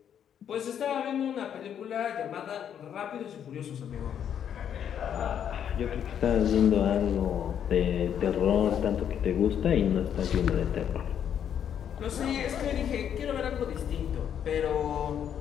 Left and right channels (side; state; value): right; quieter; 8.9 dB